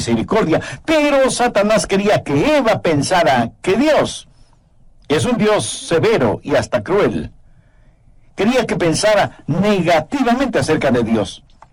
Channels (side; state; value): both; identical; correlation 1.00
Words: Pero Satanás quería que Eva pensara que Dios es un Dios severo y hasta cruel. Quería que pensara negativamente acerca de Dios.